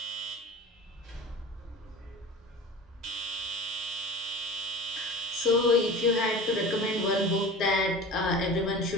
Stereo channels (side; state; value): both; normal; correlation 0.36